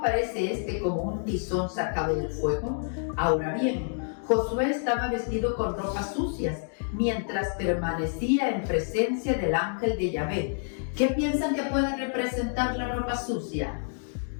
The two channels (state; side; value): silent; right; 59 dB below the other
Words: este como un tizón sacado del fuego? Ahora bien, Josué estaba vestido con ropas sucias mientras permanecía en presencia del ángel de Yahvé. ¿Qué piensan que puede representar la ropa sucia?